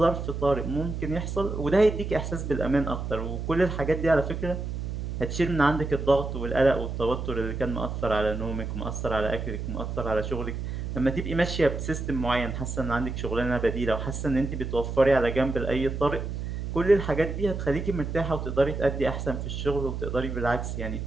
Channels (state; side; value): noise; right; hum, 5 dB below the sound